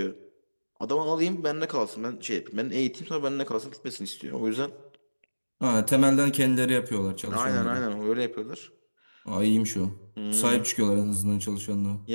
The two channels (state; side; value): inverted; both; correlation -1.00